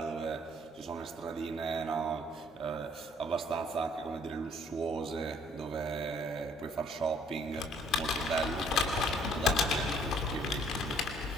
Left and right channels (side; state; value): both; normal; correlation 0.62